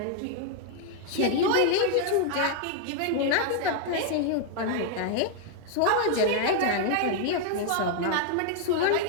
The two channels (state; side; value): different; both; correlation 0.00